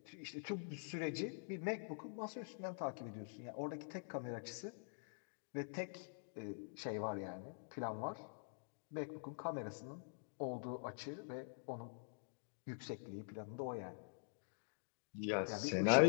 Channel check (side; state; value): right; silent; digital silence